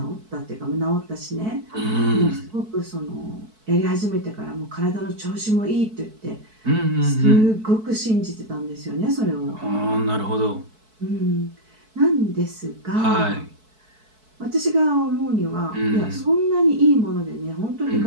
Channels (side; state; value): left; late; 4.6 ms